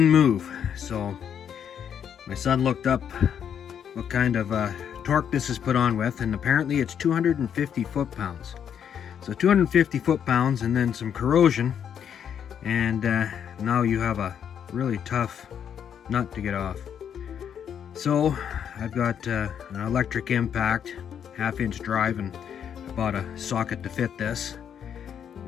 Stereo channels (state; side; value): quieter; right; 8.5 dB